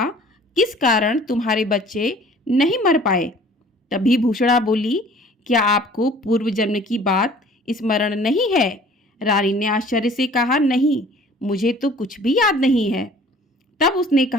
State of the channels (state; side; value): normal; both; correlation 0.50